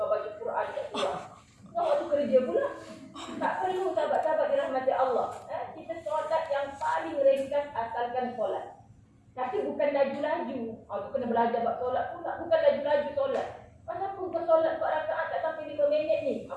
Quran tak keluar. Kau waktu kerja pula. Tak perlu sahabat-sahabat dirahmati Allah. Kita solat yang paling ringkas asalkan solat. Tapi bukan laju-laju. Tu kena belajar buat solat pula. Bukan laju-laju solat. Pasal pun kau solat 4 rakaat tak sampai 5 minit ni.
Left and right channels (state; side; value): identical; both; correlation 1.00